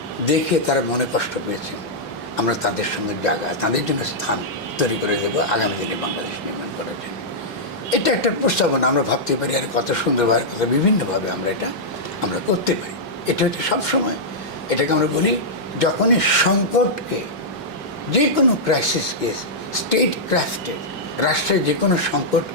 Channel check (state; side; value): normal; both; correlation -0.09